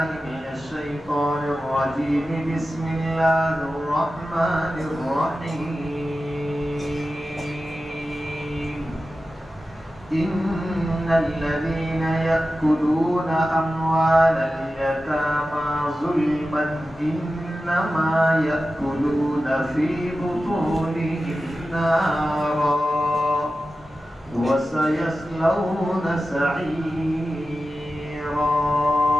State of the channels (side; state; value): both; normal; correlation 0.93